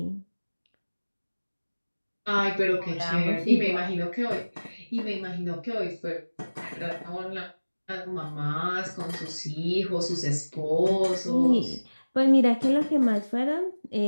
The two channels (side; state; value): both; inverted; correlation -1.00